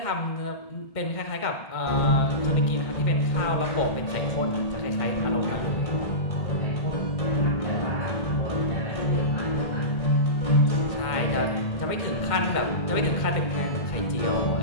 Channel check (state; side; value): late; right; 2.1 ms